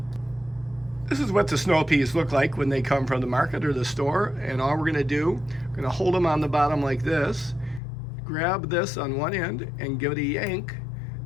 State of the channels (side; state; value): right; drops out; at 7.8 s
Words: This is what the snow peas look like when they come from the market or the store, and all we're going to do, we're going to hold them on the bottom like this, grab this on one end and give it a yank,